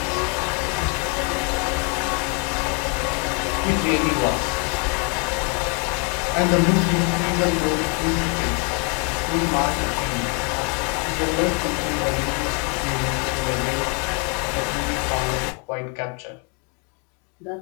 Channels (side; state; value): right; quieter; 36.1 dB